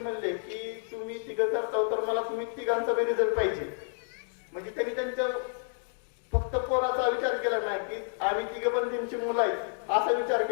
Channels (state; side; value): silent; right; digital silence